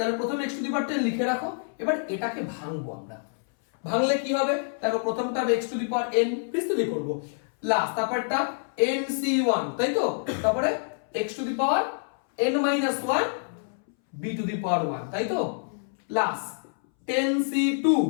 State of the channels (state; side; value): silent; right; 60 dB below the other